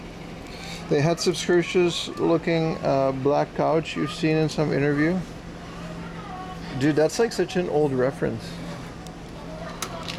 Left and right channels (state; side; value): identical; both; correlation 1.00